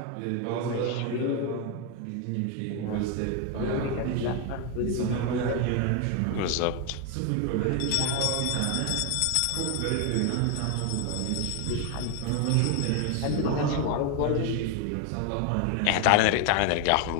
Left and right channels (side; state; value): both; different; correlation 0.01